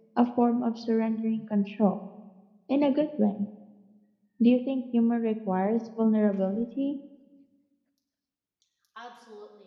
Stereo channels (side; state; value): both; identical; correlation 1.00